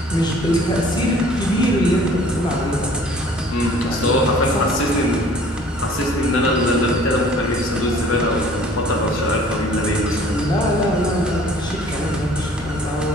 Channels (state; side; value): normal; both; correlation 0.52